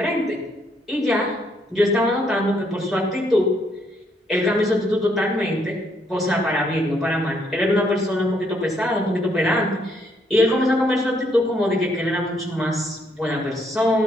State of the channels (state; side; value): normal; both; correlation 0.72